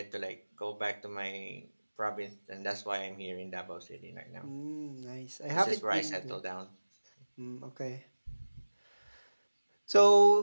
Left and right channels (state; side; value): inverted; both; correlation -1.00